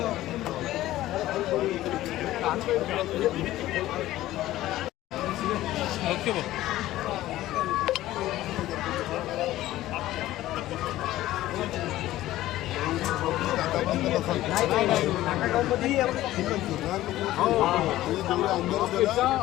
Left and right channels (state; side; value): quieter; right; 15.2 dB